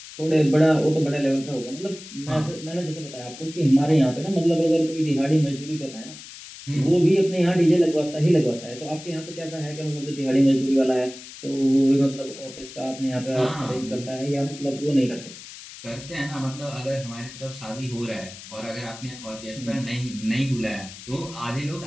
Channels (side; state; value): left; noise; hiss, 15 dB below the sound